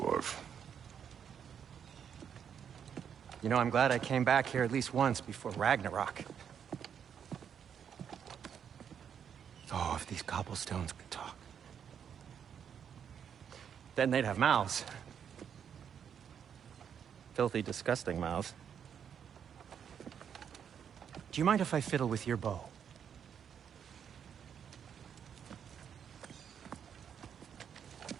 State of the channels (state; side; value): quieter; left; 8.0 dB